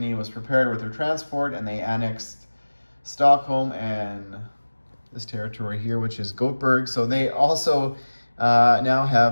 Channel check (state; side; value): inverted; both; correlation -1.00